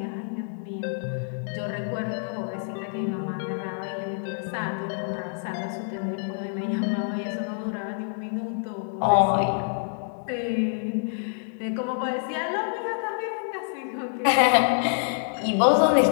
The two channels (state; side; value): silent; right; digital silence